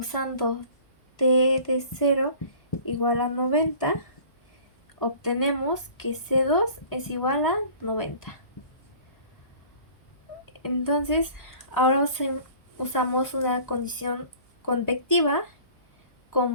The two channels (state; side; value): late; right; 1.0 ms